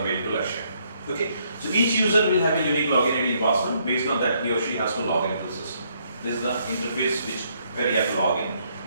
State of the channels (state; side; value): inverted; both; correlation -0.71